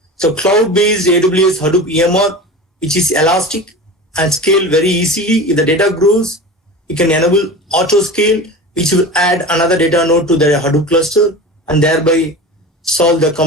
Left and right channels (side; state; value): both; normal; correlation 0.32